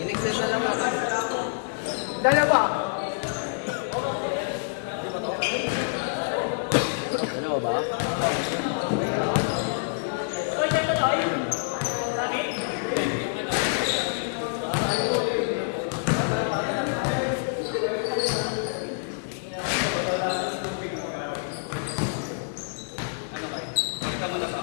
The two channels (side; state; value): right; silent; digital silence